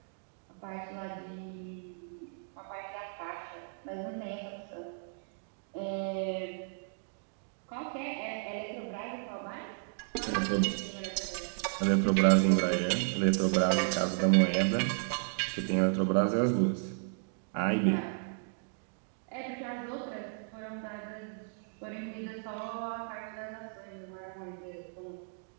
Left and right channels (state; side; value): silent; left; digital silence